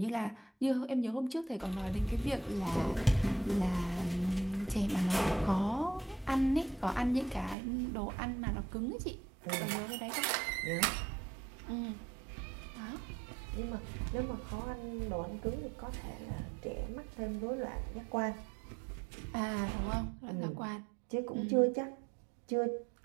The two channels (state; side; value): drops out; left; at 7.6 s